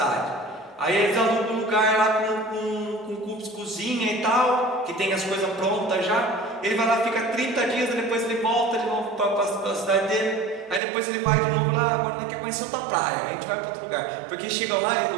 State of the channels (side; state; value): left; drops out; at 10.8 s